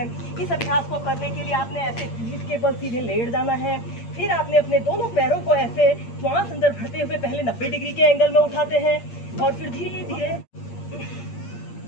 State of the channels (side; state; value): right; late; 8.6 ms